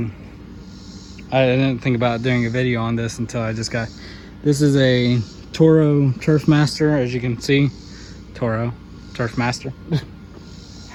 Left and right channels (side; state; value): both; identical; correlation 1.00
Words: I didn't think about doing a video on this until I just got this. Is a Toro Turfmaster, as you can see. Toro Turfmaster.